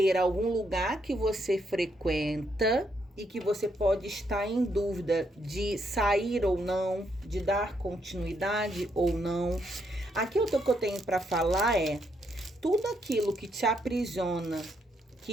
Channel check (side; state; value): both; normal; correlation 0.76